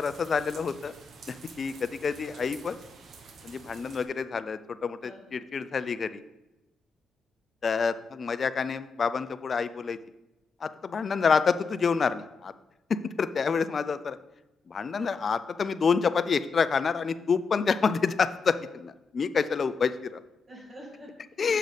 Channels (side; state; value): right; quieter; 5.2 dB